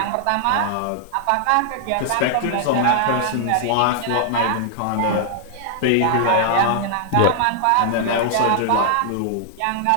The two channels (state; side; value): different; both; correlation 0.00